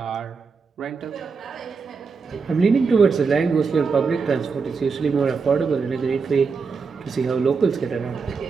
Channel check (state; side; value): quieter; left; 5.1 dB